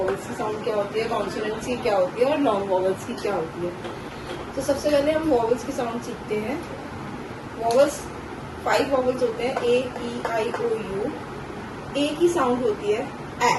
की साउंड क्या होती है, कॉन्सोनेंट्स की क्या होती है और लॉन्ग वॉवल्स की क्या होती है। तो सबसे पहले हम वॉवल्स की साउंड सीखते हैं। वॉवल्स 5 वॉवल्स होते हैं, ए ई आई ओ यू। ए की साउंड होती है ए,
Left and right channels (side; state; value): both; identical; correlation 1.00